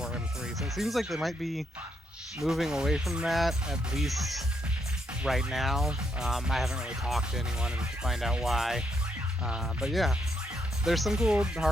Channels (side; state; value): both; normal; correlation 0.77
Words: M3. So it seems like they might be moving away from that, at least right now. I haven't really talked to anyone to find out why. But yeah, there's some cool